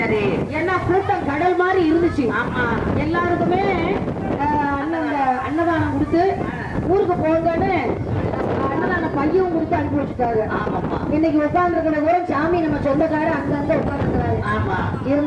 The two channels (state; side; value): identical; both; correlation 1.00